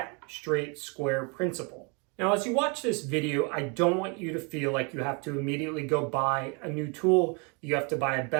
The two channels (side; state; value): left; quieter; 33.4 dB